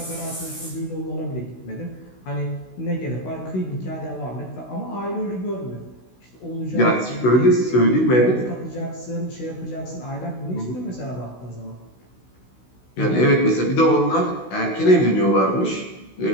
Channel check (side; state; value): right; late; 16 ms